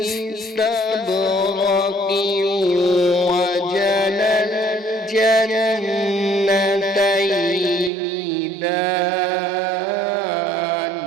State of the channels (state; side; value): drops out; left; at 7.9 s